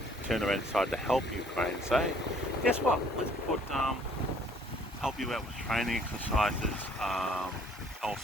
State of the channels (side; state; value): both; normal; correlation 0.59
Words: turn around and decide to help Ukraine and say, guess what, let's help you out with training exercises,